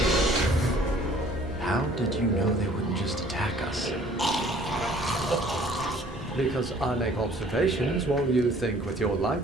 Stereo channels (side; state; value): both; normal; correlation 0.55